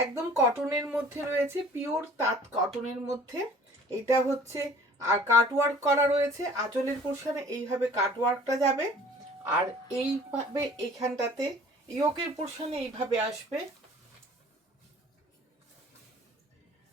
কটনের মধ্যে রয়েছে, পিওর তাঁত কটনের মধ্যে। এটা হচ্ছে আর কাটওয়ার্ক করা রয়েছে আঁচলের পোর্শনে, এইভাবে কাটওয়ার্কটা যাবে। আর এইভাবে এইখানটাতে ইয়োকের পোর্শনে এইভাবে আসবে।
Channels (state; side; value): normal; both; correlation 0.50